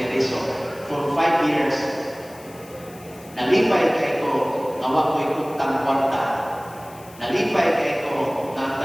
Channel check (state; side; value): noise; left; hiss, 22 dB below the sound